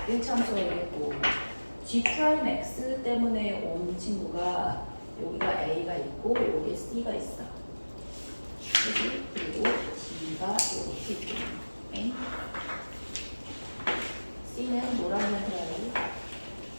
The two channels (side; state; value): both; inverted; correlation -1.00